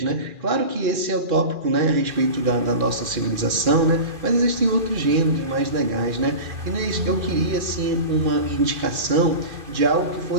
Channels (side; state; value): left; late; 2.4 ms